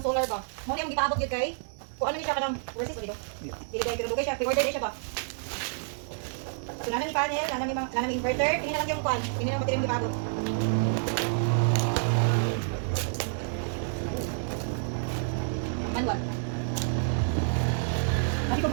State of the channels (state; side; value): silent; left; digital silence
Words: solar ba. Mo ni ang gipaabot gyud kay. Kuan ni siya kanang versus dito. Dili kay pinadugay siya, pre-order din siya ba. So nana ni panel, nana mi inverter, tingnan lang yung kuan, tingnan lang battery ang gipaabot. Manual. Lagi ko